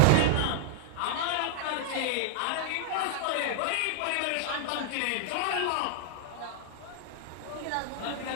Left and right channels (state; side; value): different; both; correlation -0.01